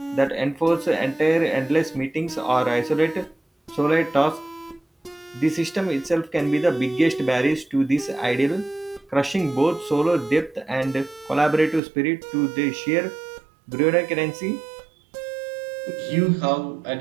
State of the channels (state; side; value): drops out; left; at 11.8 s